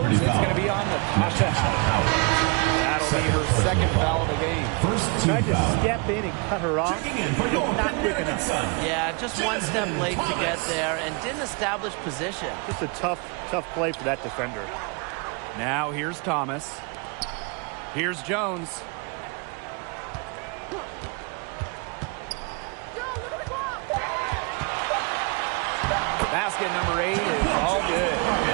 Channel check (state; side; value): quieter; left; 32.2 dB